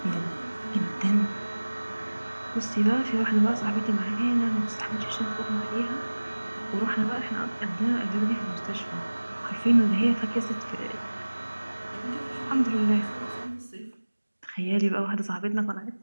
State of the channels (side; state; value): both; inverted; correlation -1.00